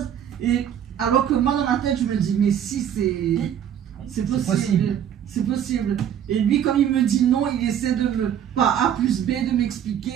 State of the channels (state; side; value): quieter; left; 9.5 dB